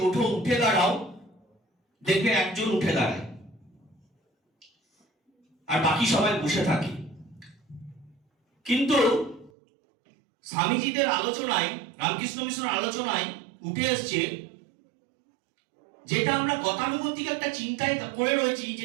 ওঠো, উঠে দাঁড়াও, দেখবে একজন উঠে দাঁড়ায়। আর বাকি সবাই বসে থাকি। কিন্তু স্বামীজিদের আলোচনায়, রামকৃষ্ণ মিশনের আলোচনায় উঠে এসছে, যেটা আমরা গতানুগতিক একটা চিন্তায় করে রয়েছি,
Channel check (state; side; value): drops out; left; at 9.5 s